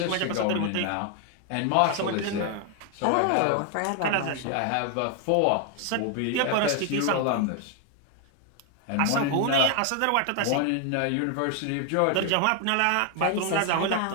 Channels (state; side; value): different; both; correlation 0.00